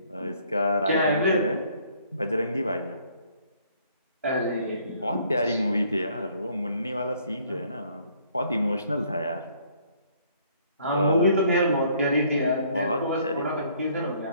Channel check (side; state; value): both; inverted; correlation -0.62